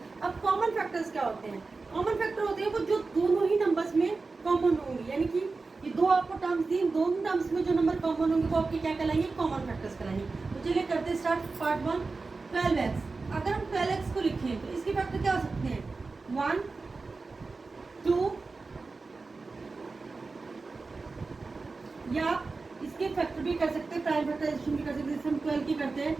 अब कॉमन फैक्टर्स क्या होते हैं? कॉमन फैक्टर होते हैं वो जो दोनों ही नंबर्स में कॉमन होंगे, यानी कि ये दो आपको टर्म्स दी, दोनों टर्म्स में जो नंबर कॉमन होंगे वो आपके क्या कहलाएंगे, कॉमन फैक्टर्स कहलाएंगे। तो चलिए करते हैं स्टार्ट। Part 1 12x। अगर हम 12x को लिखें तो इसके फैक्टर क्या हो सकते हैं, 1 2, या इसके फैक्टर भी कर सकते हैं, प्राइम फैक्टराइजेशन भी कर सकते हैं। जैसे हम 12 की करते हैं,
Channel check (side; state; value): left; quieter; 4.0 dB